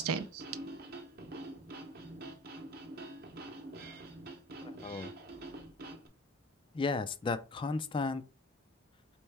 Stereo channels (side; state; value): both; normal; correlation 0.42